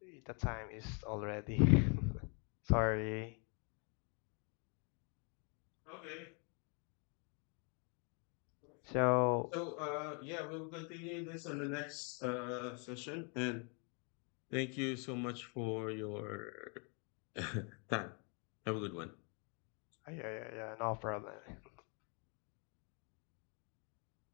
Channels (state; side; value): quieter; right; 36.8 dB